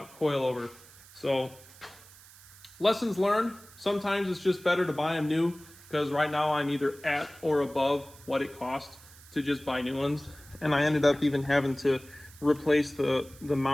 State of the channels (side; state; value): right; noise; hiss, 22 dB below the sound